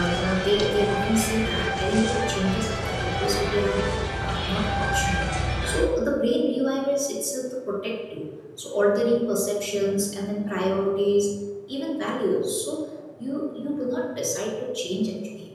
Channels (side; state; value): both; identical; correlation 1.00